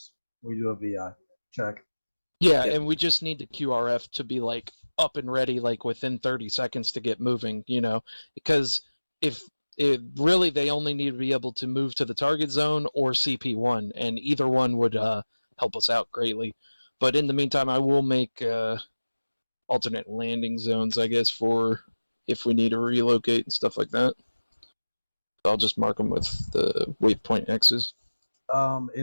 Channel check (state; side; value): inverted; both; correlation -1.00